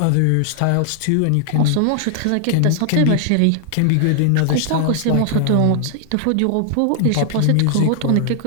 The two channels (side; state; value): both; different; correlation 0.00